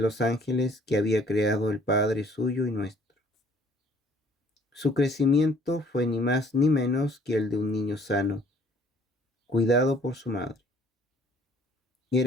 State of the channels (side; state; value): both; normal; correlation 0.58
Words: ángeles que había creado el Padre suyo y nuestro. Su crecimiento fue ni más ni menos que el de un niño sano, cuidado por su madre.